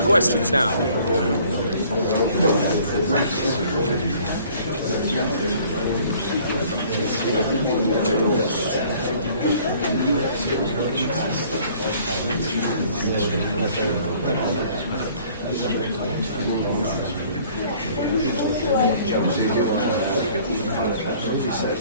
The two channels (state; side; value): inverted; both; correlation -0.55